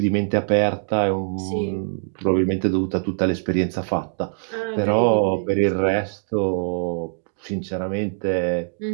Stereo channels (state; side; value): silent; left; digital silence